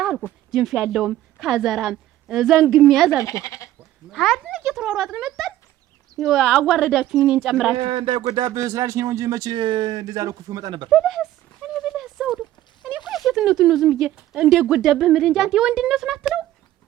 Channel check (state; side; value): quieter; left; 13.9 dB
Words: አልኩ። ጅንፍ ያለውም ካዘራም ዘንግም ያዝ አልኩ። ሀድን እየተሯሯጥን መጣን። አዋረዳችሁኝ እኔን ጨምራችሁ። እንዳይጎዳብህ ስላልሽ ነው እንጂ መች እንደዛ ነው ክፉ መጣ ነበር። ብለህስ ዘውዱ እኔ እኮ የሴትነቱን ነው ዝም ብዬ እንዳይጎዳብህ የምልህ እንጂ አንተ የወንድነቱን አትለው።